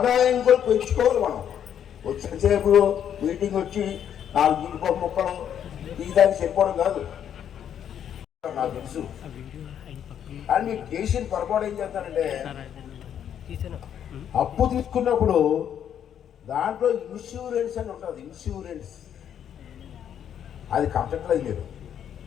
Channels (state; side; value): quieter; right; 9.3 dB